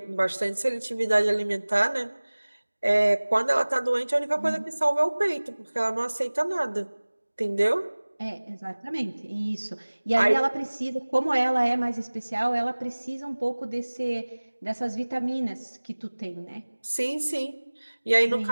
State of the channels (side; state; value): both; inverted; correlation -1.00